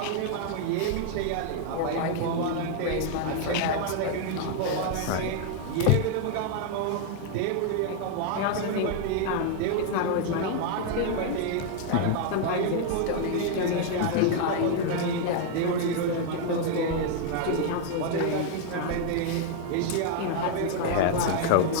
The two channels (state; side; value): different; both; correlation 0.00